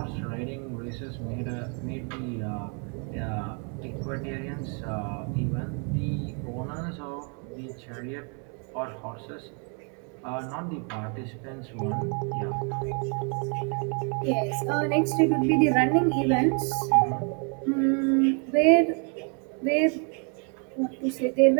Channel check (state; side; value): quieter; left; 38.5 dB